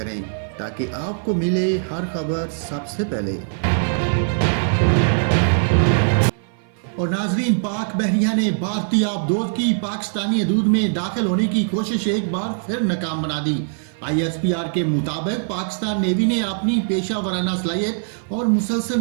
تاکہ آپ کو ملے ہر خبر سب سے پہلے۔ اور ناظرین، پاک بحریہ نے بھارتی آبدوز کی پاکستانی حدود میں داخل ہونے کی کوشش ایک بار پھر ناکام بنا دی۔ ISPR کے مطابق پاکستان نیوی نے اپنی پیشہ ورانہ صلاحیت اور مسلسل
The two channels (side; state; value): left; silent; 55 dB below the other